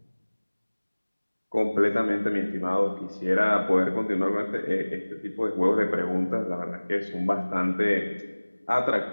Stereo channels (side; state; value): both; inverted; correlation -1.00